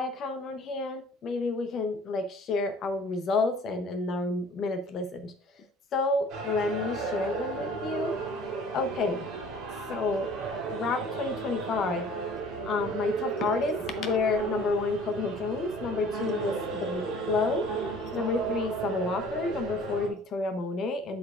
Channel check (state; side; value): normal; both; correlation 0.50